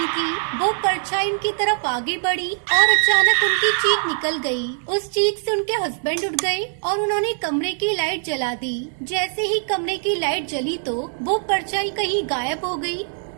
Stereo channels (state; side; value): silent; left; digital silence